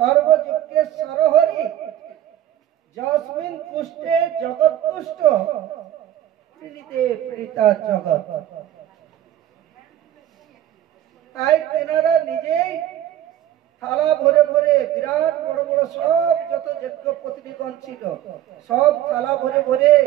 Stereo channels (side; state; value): left; quieter; 12.2 dB